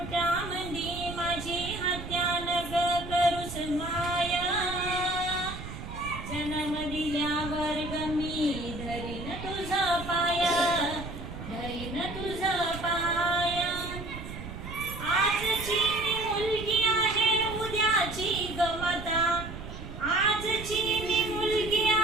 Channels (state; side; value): noise; right; rumble, 10 dB below the sound